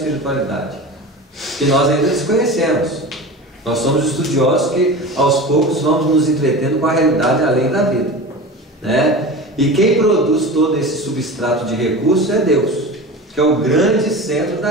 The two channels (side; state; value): both; normal; correlation 0.32